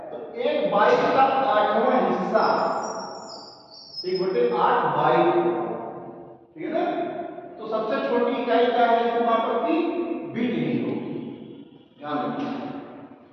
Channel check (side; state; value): both; identical; correlation 1.00